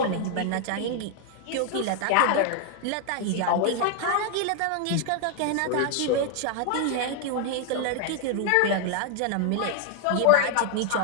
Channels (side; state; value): both; different; correlation 0.00